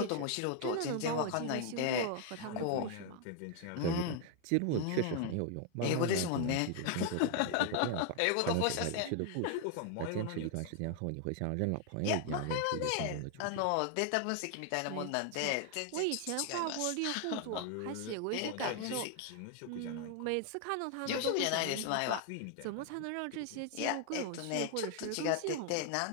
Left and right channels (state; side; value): different; both; correlation 0.00